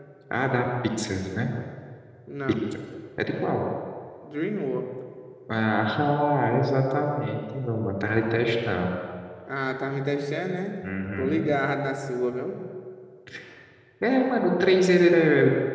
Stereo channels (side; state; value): both; identical; correlation 1.00